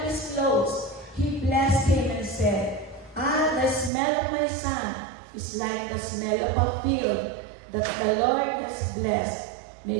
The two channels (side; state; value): left; drops out; at 3.9 s